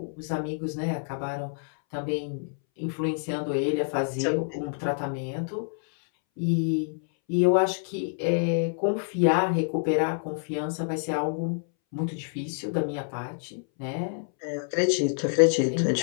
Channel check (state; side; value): silent; right; 60 dB below the other